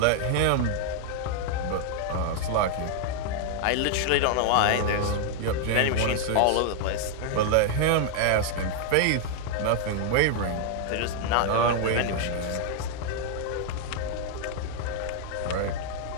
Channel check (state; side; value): different; both; correlation 0.00